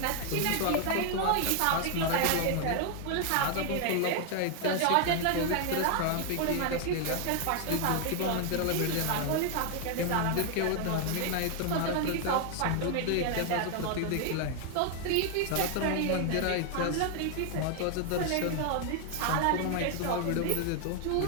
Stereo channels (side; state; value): both; different; correlation 0.00